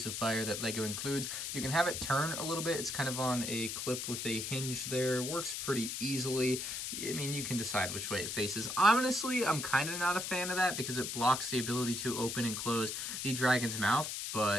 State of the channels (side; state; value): left; noise; hiss, 4 dB below the sound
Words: of fire that LEGO includes. You can have it turn a little bit. It's kind of on a clip with a hinge there. Works pretty easily. I mean, you can decide which way it faces. Honestly, I'm kind of not a fan of that because it blocks the ability to open and close the dragon's mouth.